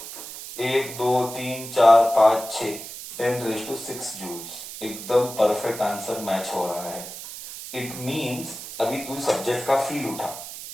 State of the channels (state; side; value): noise; right; hiss, 11 dB below the sound